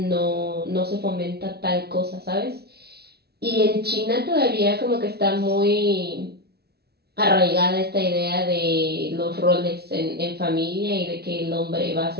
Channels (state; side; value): late; left; 0.47 ms